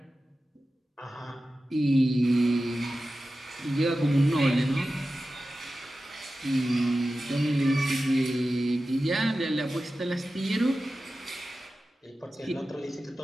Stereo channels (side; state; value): both; normal; correlation 0.94